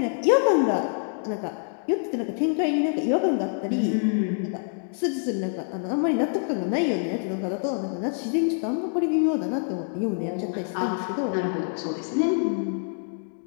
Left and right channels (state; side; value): silent; right; 61 dB below the other